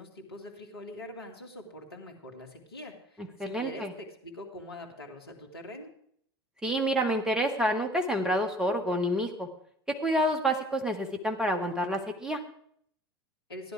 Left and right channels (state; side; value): normal; both; correlation 0.53